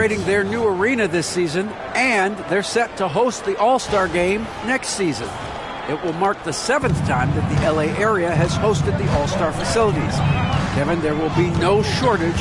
their new arena this season, and they're set to host the All-Star Game next season. It will mark the 7th time that the LA area has hosted the All-Star facilities. Kevin, there will be no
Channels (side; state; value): both; identical; correlation 1.00